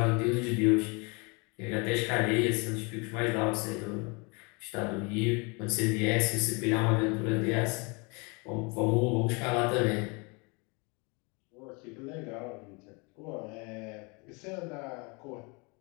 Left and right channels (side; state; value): right; quieter; 30.3 dB